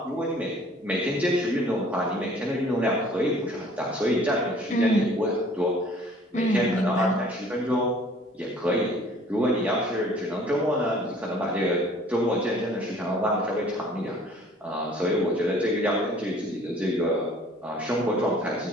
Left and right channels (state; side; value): normal; both; correlation 0.53